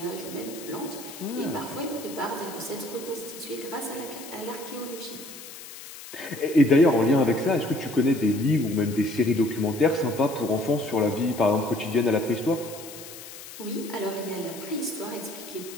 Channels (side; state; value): left; noise; hiss, 14 dB below the sound